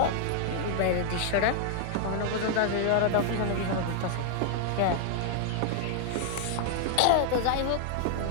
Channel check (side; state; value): both; different; correlation 0.00